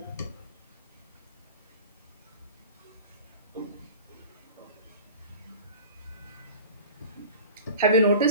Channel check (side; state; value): both; inverted; correlation -0.38